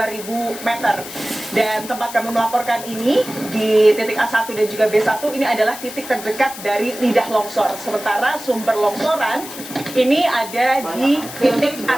meter. Dan tempat kami melaporkan ini di titik A1 dan juga B1 ini adalah titik terdekat dari lidah longsor. Sementara sumber longsoran ini ada di titik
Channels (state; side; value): noise; left; hiss, 12 dB below the sound